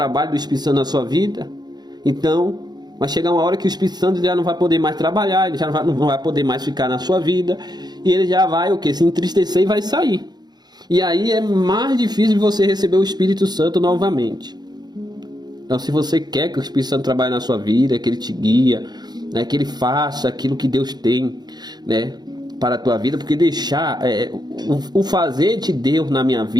do Espírito Santo na sua vida, então vai chegar uma hora que o Espírito Santo já não vai poder mais trabalhar, ele já não vai poder mais ficar na sua vida, e ele já vai se entristecer e vai sair. E aí é mais difícil de você receber o Espírito Santo novamente. Então, se você quer que o Espírito Santo trabalhe na sua vida, que ele te guia, né, que ele faça aquilo que Deus tem, né, para a tua vida, porque deixar o fazer de Deus na minha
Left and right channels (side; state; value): left; late; 0.20 ms